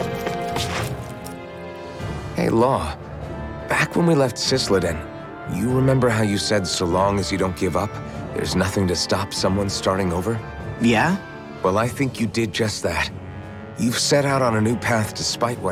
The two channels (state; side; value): identical; both; correlation 1.00